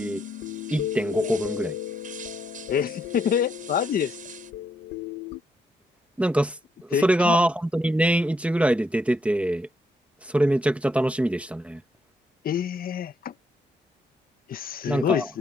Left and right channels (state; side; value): normal; both; correlation 0.76